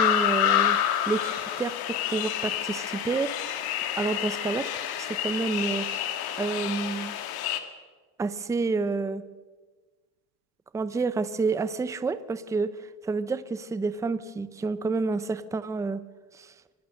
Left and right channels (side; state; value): both; normal; correlation 0.44